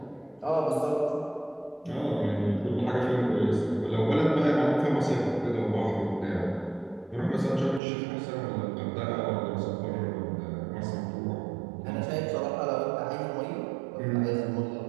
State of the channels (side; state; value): left; drops out; at 7.8 s